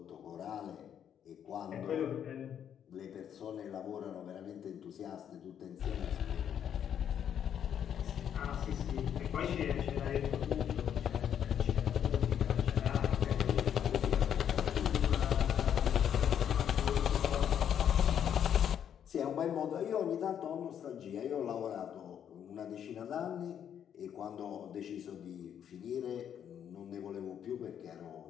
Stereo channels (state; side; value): quieter; right; 9.1 dB